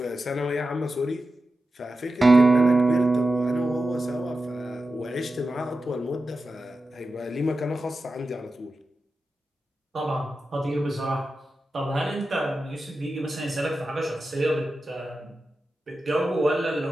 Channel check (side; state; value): both; normal; correlation 0.92